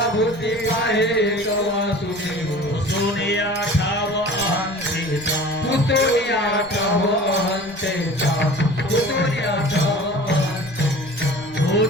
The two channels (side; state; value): right; noise; rumble, 22 dB below the sound